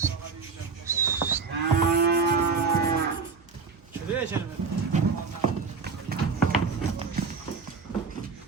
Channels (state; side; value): quieter; left; 4.9 dB